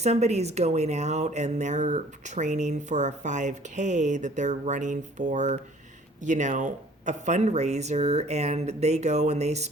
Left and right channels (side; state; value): both; normal; correlation 0.53